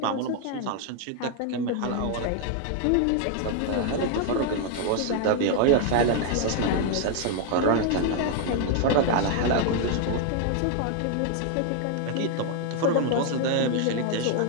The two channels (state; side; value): different; both; correlation 0.00